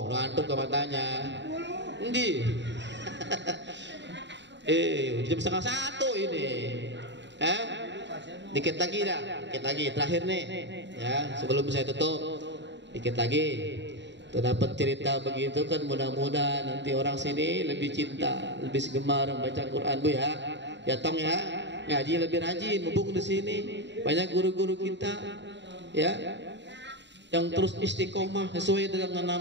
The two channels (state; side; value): late; left; 0.52 ms